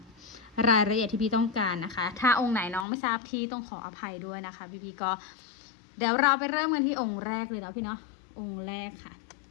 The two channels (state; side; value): drops out; right; at 2.9 s